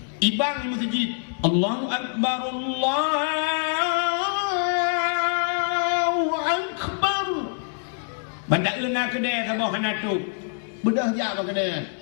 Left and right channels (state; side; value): silent; right; digital silence